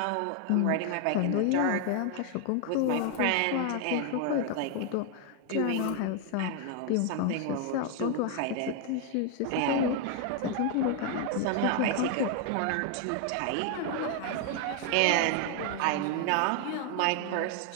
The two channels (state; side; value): different; both; correlation 0.00